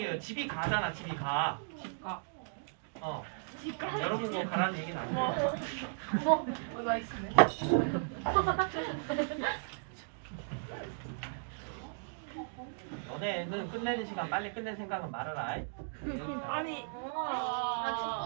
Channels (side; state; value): left; silent; digital silence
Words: 집이 가잖아, 집이 가. 집가. 여러분 그거 가라는 얘기는 아니에요. 뭐가 있으네. 너네는 끝내는 시간 빨리 끝낼 생각은 말아라. 아니.